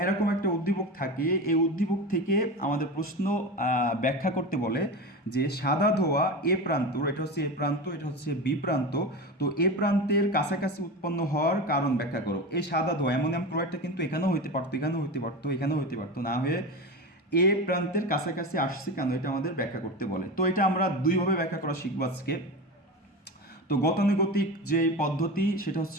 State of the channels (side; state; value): both; normal; correlation 0.25